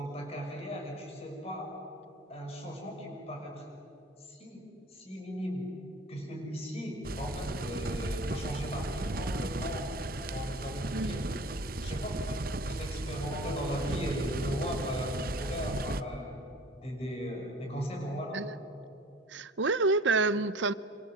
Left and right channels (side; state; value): both; normal; correlation 0.44